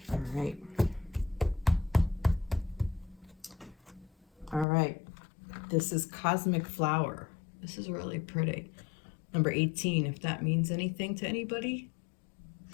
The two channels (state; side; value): drops out; right; at 4.7 s